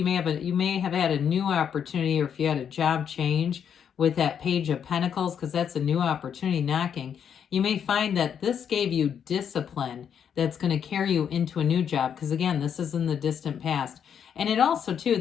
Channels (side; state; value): right; quieter; 8.1 dB